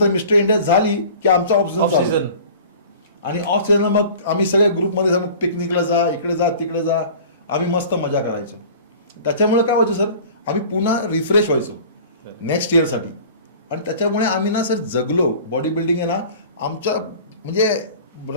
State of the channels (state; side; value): inverted; both; correlation -0.43